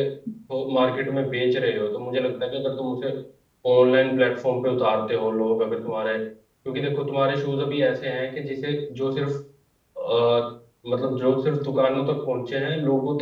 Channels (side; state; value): both; identical; correlation 1.00